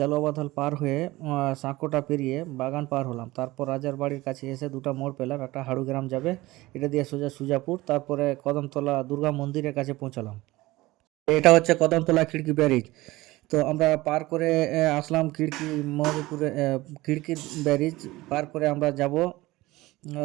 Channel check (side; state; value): left; quieter; 19.3 dB